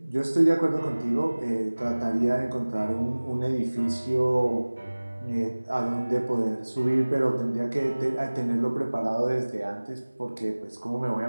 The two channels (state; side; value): inverted; both; correlation -1.00